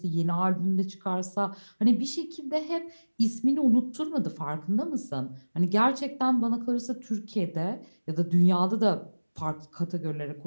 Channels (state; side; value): inverted; both; correlation -1.00